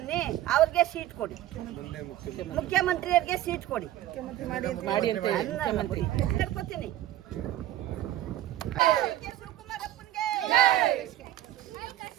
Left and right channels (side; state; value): left; quieter; 13.7 dB